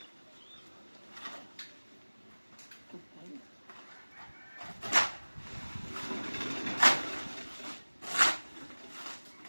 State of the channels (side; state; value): both; inverted; correlation -1.00